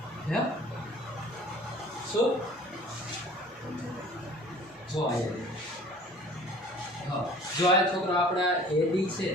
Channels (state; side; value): normal; both; correlation 0.48